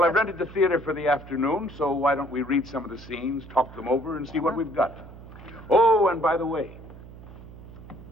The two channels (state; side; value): noise; right; hum, 17 dB below the sound